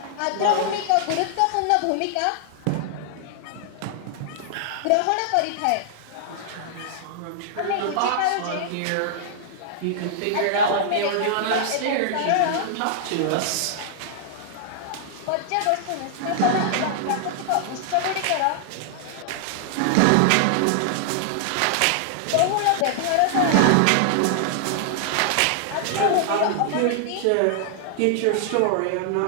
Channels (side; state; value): both; different; correlation -0.01